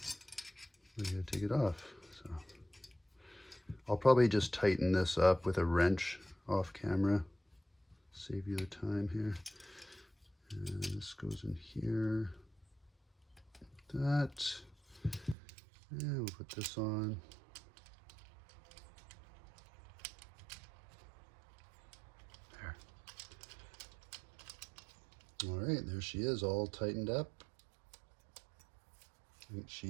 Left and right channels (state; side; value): drops out; left; at 15.4 s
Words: We gotta take it off. So I'll probably just tighten this up with a wrench off camera. Save you the time here. And this goes in here. That. And we'll put this on. There. All right, there she is, all tightened up. Ain't